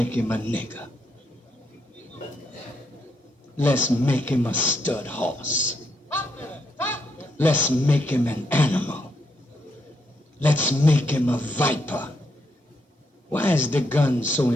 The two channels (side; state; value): both; normal; correlation 0.78